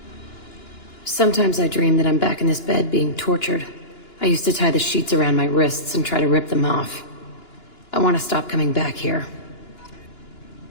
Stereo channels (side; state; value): right; late; 2.9 ms